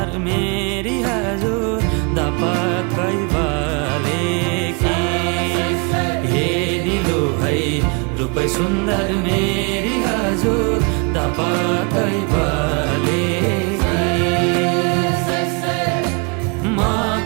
मेरी हजुर दपक्कै बले कि हे निलु है रूपै सुन्दर मेरी हजुर दपक्कै बले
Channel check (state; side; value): quieter; left; 33.2 dB